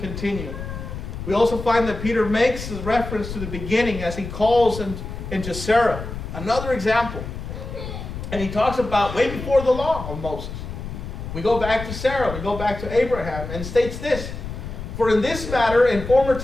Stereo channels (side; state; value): left; noise; rumble, 8 dB below the sound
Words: We also find that Peter makes a reference to the beginning as he calls into Sarah. Another example. And he talks about way before the law of Moses. We go back to Sarah, we go back to Abraham, and states this: "For in this matter, in former